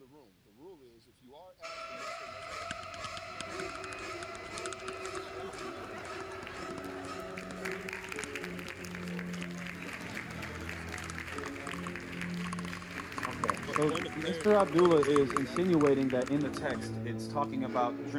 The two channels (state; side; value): identical; both; correlation 1.00